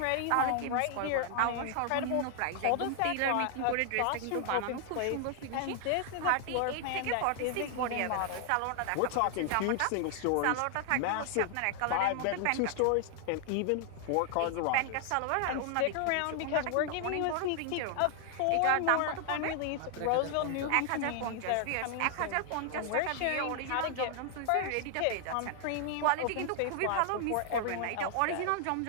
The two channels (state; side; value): different; both; correlation 0.00